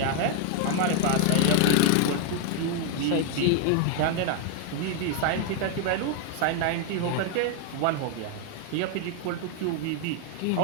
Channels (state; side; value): different; both; correlation 0.00